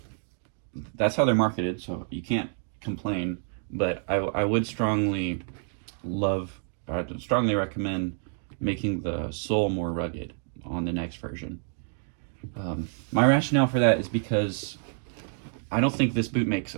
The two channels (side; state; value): left; silent; 59 dB below the other